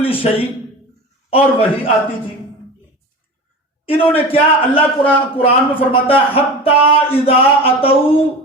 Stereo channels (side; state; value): both; normal; correlation 0.32